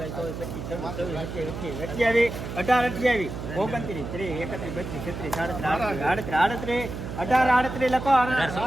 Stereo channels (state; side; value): noise; right; hum, 7 dB below the sound